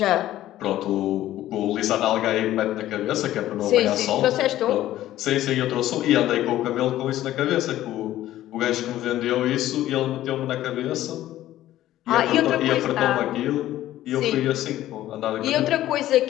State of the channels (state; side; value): quieter; right; 13.9 dB